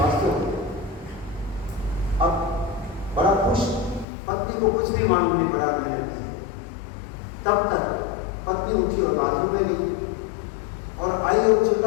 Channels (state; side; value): drops out; right; at 4.0 s